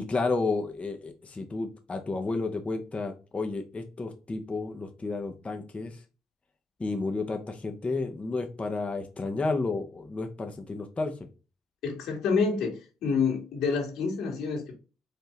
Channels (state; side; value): quieter; right; 3.7 dB